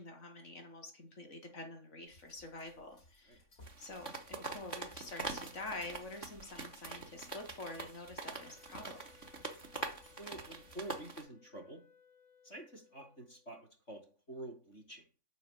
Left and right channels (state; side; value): late; right; 3.5 ms